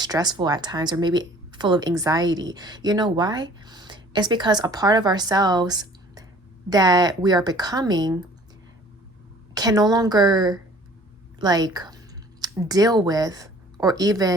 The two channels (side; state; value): both; normal; correlation 0.51